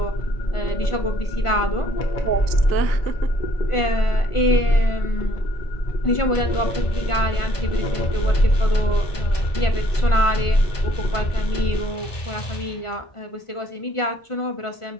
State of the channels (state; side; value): late; right; 1.5 ms